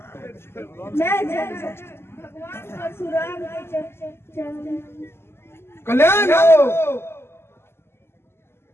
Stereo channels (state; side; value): late; right; 0.12 ms